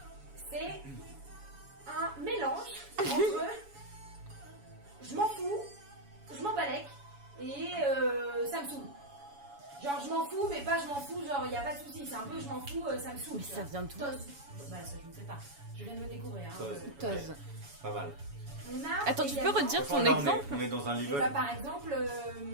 C'est un mélange entre je m'en fous, je m'en balèque et ça me saoule. Genre je m'en fous, mais pas je m'en fous, genre il n'y a pas de souci, c'est un peu je m'en fous, ça me saoule. Mais tu ça vois. vient d'où? Toz. Bah ça je ne sais pas, je viens de le découvrir. Hein. Toz. Toz. Pas mal. On a Attends, tu peux également- redire Franchement, ton là, exemple? on est dans un Et level. bah, par exemple,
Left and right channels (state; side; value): late; left; 7.1 ms